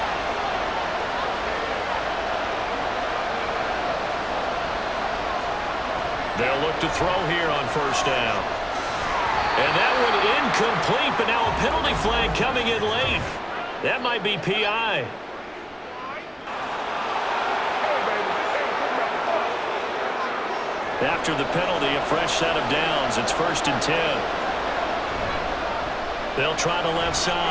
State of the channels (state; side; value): identical; both; correlation 1.00